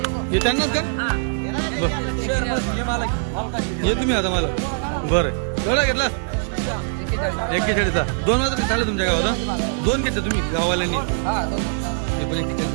हे त्यांनाच का बर ये तुम्ही आता मला बरं केवढा घेतला 41चा 2 वाजता चालले तुमच्या गावात 2 घेतले तुम्ही गाववाल्यांनी हे पण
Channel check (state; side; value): silent; left; digital silence